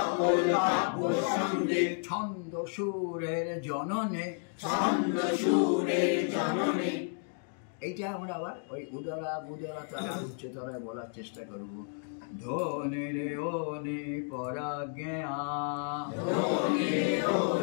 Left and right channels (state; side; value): silent; right; 56 dB below the other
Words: ছন্দ সুরের জননে, ছন্দ সুরের জননে। এইটা আমরা আবার ওই উদারা বুদারা তারা উচ্চতরায় বলার চেষ্টা করব। ধ্বনি রে ওনি পরাজ্ঞা, ধ্বনি